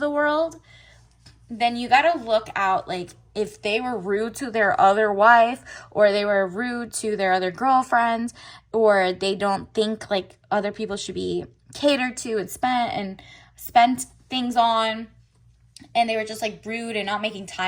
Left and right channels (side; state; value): both; identical; correlation 1.00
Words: world, then you gotta look out, like, if they were rude to their other wife or they were rude to their other girlfriends, or they don't think like other people should be catered to and spent things on, and they were just like rude and not making